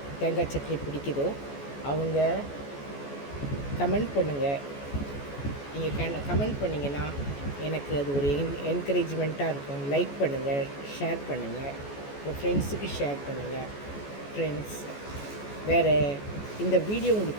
தேங்காய் சட்னி பிடிக்குதோ அவங்க கமெண்ட் பண்ணுங்கள். நீங்கள் கமெண்ட் பண்ணிங்கன்னா எனக்கு அது ஒரு என்கரேஜ்மெண்ட்டாக இருக்கும். லைக் பண்ணுங்கள், ஷேர் பண்ணுங்கள், உங்கள் ஃப்ரெண்ட்ஸுக்கு ஷேர் பண்ணுங்கள். ஃப்ரெண்ட்ஸ், வேறு இந்த வீடியோ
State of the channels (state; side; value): late; right; 14 ms